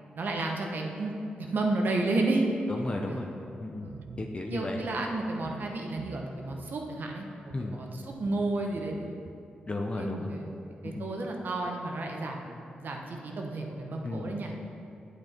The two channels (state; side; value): normal; both; correlation 0.83